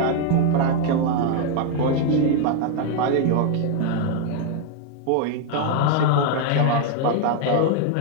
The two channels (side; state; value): both; different; correlation 0.01